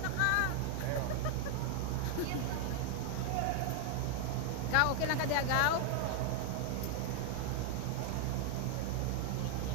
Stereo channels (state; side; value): different; both; correlation 0.00